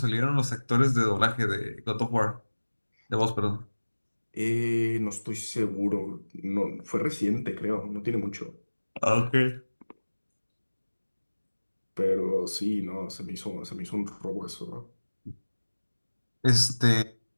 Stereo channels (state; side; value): inverted; both; correlation -1.00